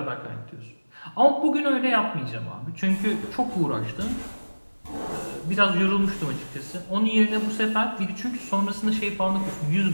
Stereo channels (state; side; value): inverted; both; correlation -1.00